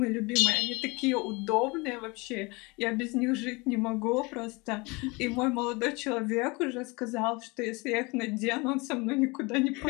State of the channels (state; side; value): quieter; right; 26.4 dB